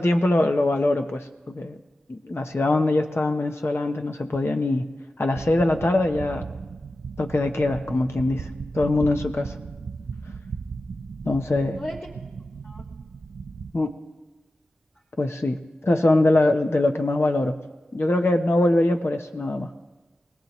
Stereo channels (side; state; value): both; normal; correlation 0.93